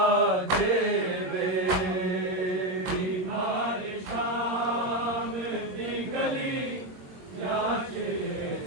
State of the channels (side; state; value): left; late; 22 ms